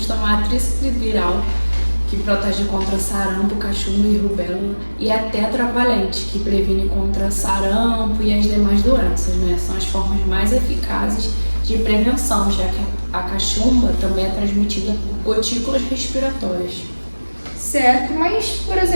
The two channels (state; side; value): inverted; both; correlation -1.00